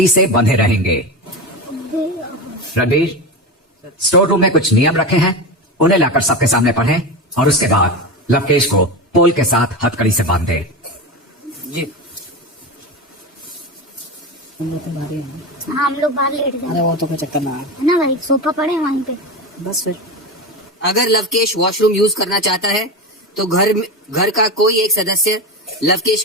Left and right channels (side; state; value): both; normal; correlation 0.21